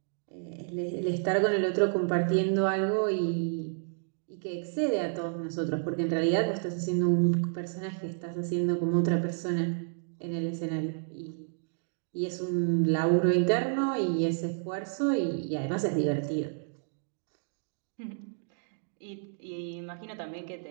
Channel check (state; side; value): silent; left; digital silence